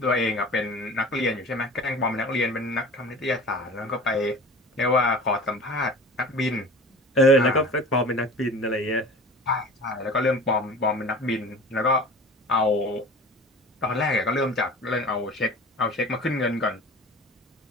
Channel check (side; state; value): both; normal; correlation 0.39